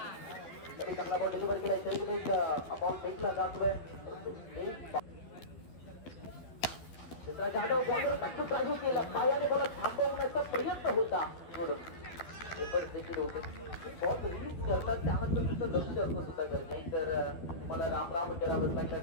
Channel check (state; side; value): late; right; 12 ms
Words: तरी चांगला बॉल डिलिव्हर केला. शरीर अबाउट फेकला जातोय. जाधव बॉलर टाकून राजू केला. पायाने बॉल थांबवण्याचा प्रयत्न होता. एफर्ट देखील होते. बॉल रिलीज करतात त्यानंतर तुमचं लक्ष असणं सुद्धा गरजेचं आहे. तर मला राम राम करावं लागलं